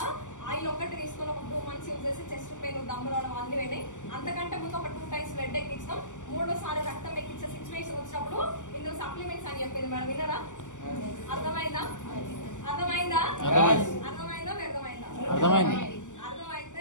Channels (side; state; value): right; late; 0.86 ms